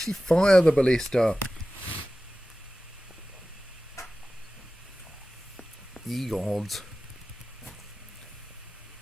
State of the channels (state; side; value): normal; both; correlation 0.96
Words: fire the ballista. Ye gods.